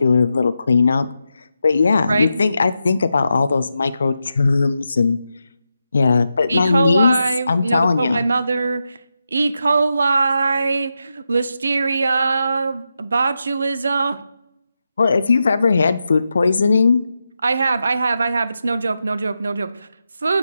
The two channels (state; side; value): inverted; both; correlation -0.87